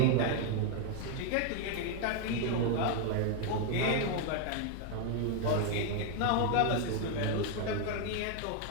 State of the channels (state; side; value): different; both; correlation 0.01